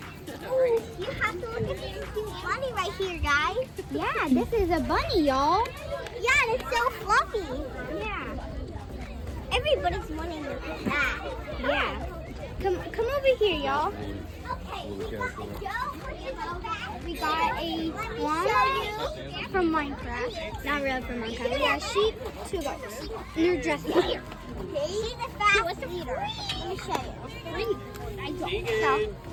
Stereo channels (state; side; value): identical; both; correlation 1.00